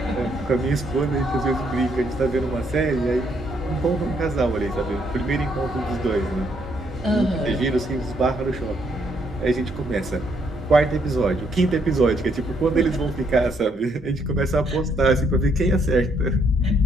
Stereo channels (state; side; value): normal; both; correlation 0.71